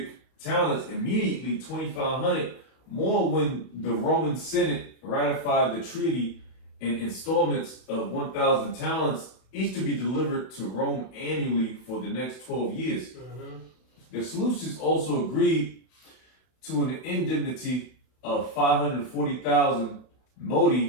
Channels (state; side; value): late; right; 31 ms